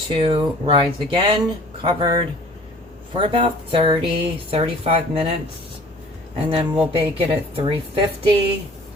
rise again, covered for about 30-35 minutes, and then we'll bake it at 350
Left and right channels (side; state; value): both; normal; correlation 0.50